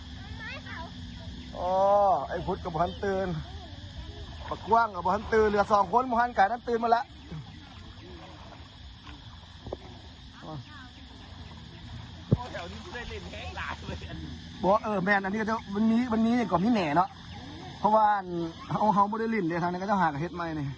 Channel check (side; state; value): both; identical; correlation 1.00